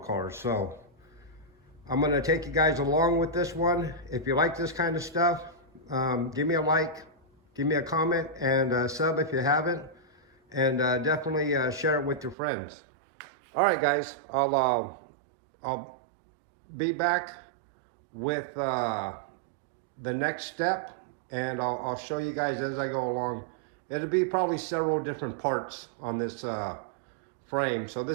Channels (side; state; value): left; drops out; at 12.4 s